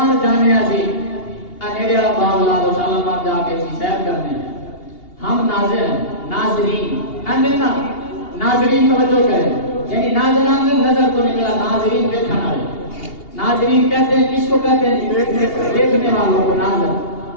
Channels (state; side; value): late; right; 2.8 ms